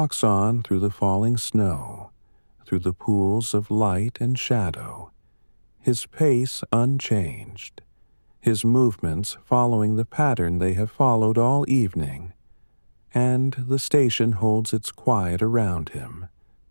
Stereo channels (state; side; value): inverted; both; correlation -1.00